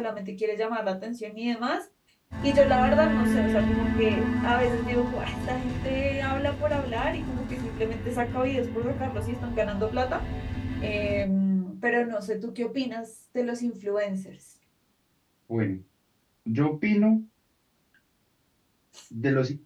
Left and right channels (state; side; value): identical; both; correlation 1.00